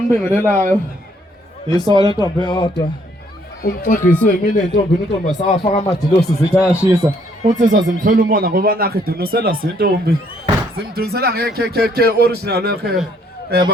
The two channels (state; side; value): normal; both; correlation 0.67